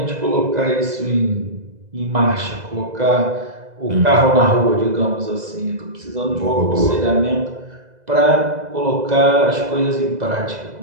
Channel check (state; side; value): late; left; 2.0 ms